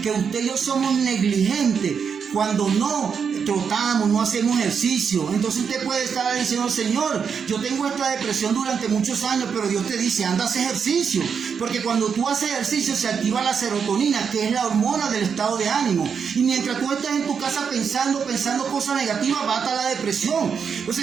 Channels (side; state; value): left; quieter; 6.6 dB